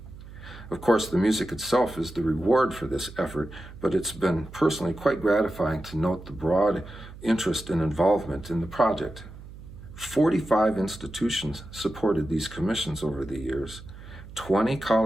Of course, the music itself is the reward for this effort, but it's been personally quite gratifying to note the broad interest and involvement in the project. 45 institutions supported these commissions over the years, 20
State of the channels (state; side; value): noise; right; hum, 16 dB below the sound